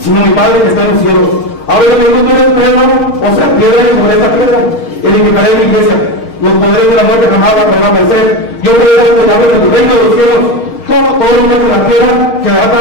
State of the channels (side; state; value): right; late; 6.4 ms